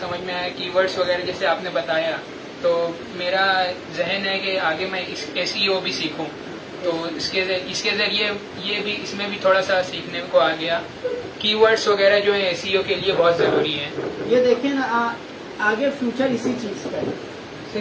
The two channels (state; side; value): identical; both; correlation 1.00